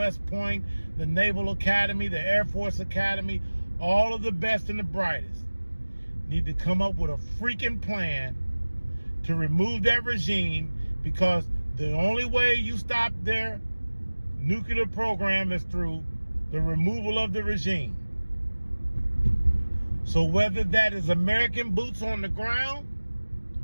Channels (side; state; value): both; inverted; correlation -1.00